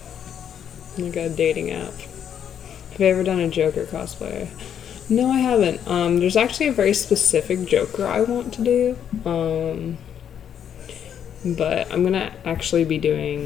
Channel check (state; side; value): quieter; right; 8.9 dB